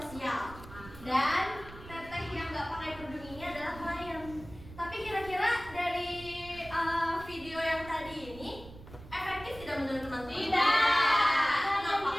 Dan teteh yang nggak pakai kerudung ini adalah klien. Tapi kira-kira dari video yang tadi ini efektif tidak menurut teman-teman? Tidak. Kenapa?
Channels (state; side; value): noise; right; rumble, 16 dB below the sound